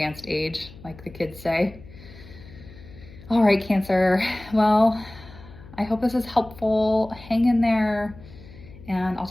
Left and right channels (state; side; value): noise; left; hum, 19 dB below the sound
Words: age, like the kids say. All right, Cancer. Well, I hope this is helpful. Hang in there, and I'll